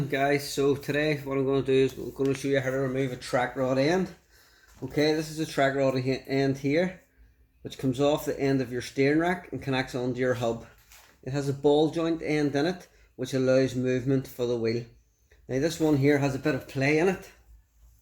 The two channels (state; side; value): identical; both; correlation 1.00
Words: guys. So today what I'm going to do is I'm going to show you how to remove a track rod end. Okay, this is a track rod end here which comes off the end of your steering rack and connects onto your hub. It has a ball joint end in it which allows movement for the wheel. Now this one here has a bit of play in it